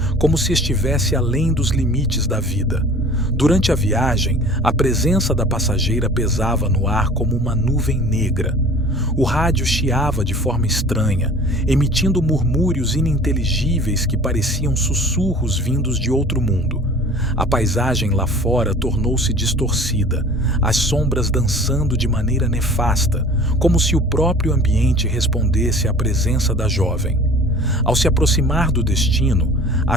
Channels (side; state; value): both; normal; correlation 0.45